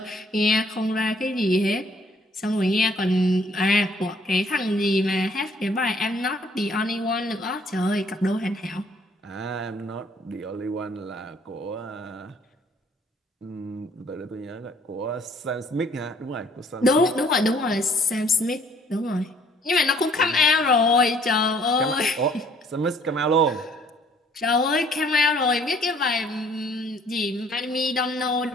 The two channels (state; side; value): normal; both; correlation 0.60